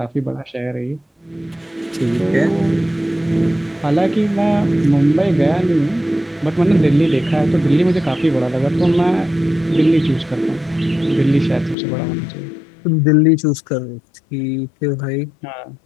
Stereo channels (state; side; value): drops out; right; at 11.8 s